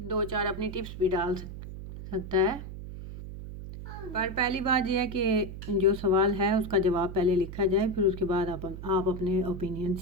अपनी टिप्स भी डाल सकता है। पर पहली बात यह है कि जो सवाल है उसका जवाब पहले लिखा जाए, फिर उसके बाद आप अपने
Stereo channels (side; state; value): right; noise; hum, 10 dB below the sound